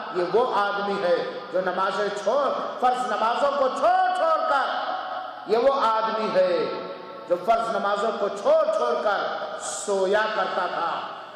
یہ وہ آدمی ہے جو نمازیں فرض نمازوں کو چھوڑ کر، یہ وہ آدمی ہے جو فرض نمازوں کو چھوڑ کر سویا کرتا تھا۔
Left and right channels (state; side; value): identical; both; correlation 1.00